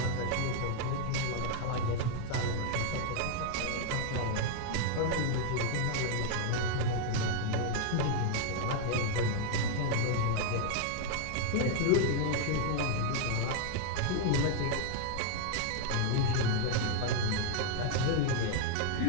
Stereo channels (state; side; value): different; both; correlation 0.00